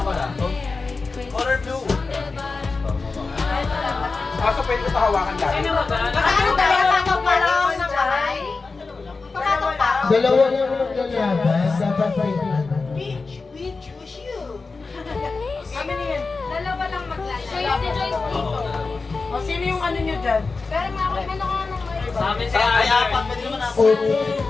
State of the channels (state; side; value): quieter; right; 4.1 dB